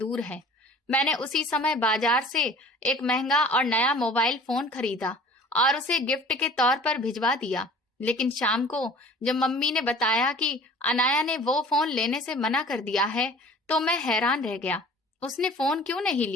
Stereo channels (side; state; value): both; normal; correlation 0.46